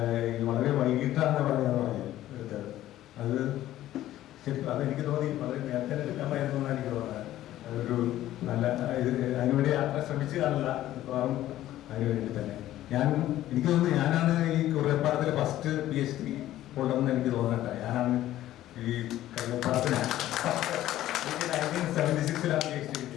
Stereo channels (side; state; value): right; quieter; 13.9 dB